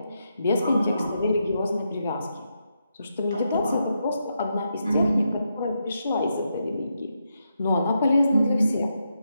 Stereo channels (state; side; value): inverted; both; correlation -0.83